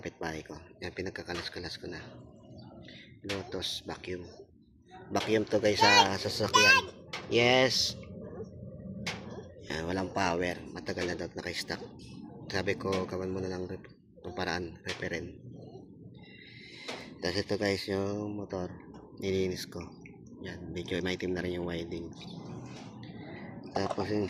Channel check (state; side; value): identical; both; correlation 1.00